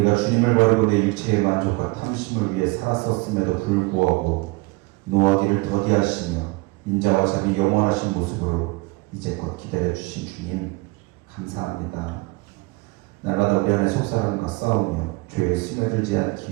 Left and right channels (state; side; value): quieter; left; 24.6 dB